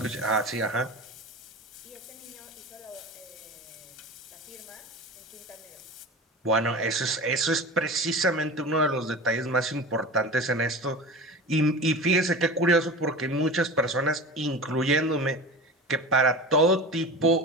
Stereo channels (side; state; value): both; normal; correlation 0.32